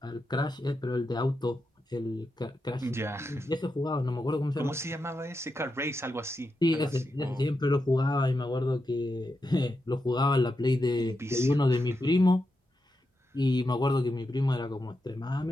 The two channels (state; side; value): normal; both; correlation 0.86